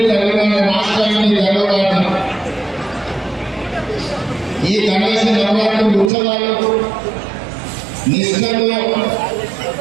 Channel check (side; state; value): left; drops out; at 6.1 s